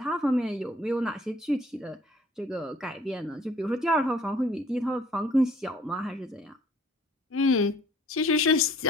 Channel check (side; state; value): both; normal; correlation 0.57